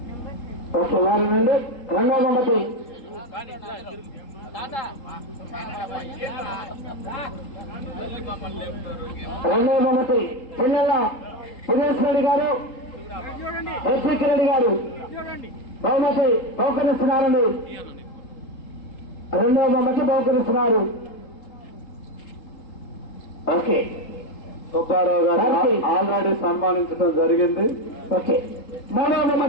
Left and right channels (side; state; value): right; late; 3.8 ms